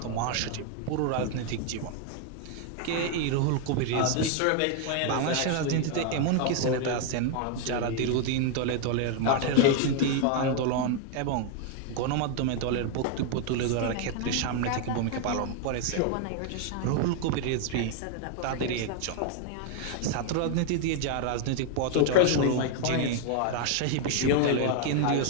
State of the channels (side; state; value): both; different; correlation 0.00